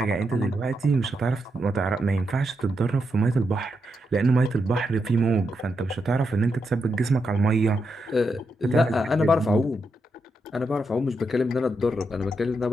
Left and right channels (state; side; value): normal; both; correlation 0.83